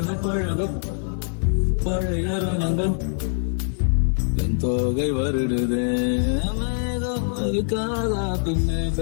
பழக பழைய ரணங்கள் என் தோகை வருடுது. மேகம் இருக்காதா பெண்ணே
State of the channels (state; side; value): silent; right; 63 dB below the other